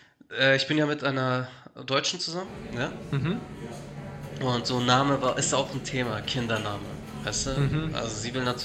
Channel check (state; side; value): identical; both; correlation 1.00